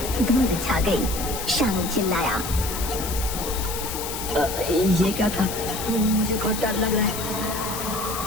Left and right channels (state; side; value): noise; left; hiss, 6 dB below the sound